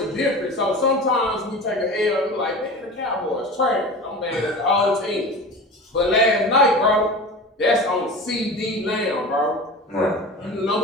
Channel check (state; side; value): normal; both; correlation 0.33